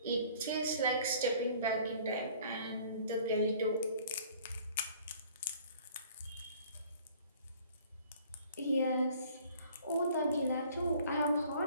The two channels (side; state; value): both; inverted; correlation -0.53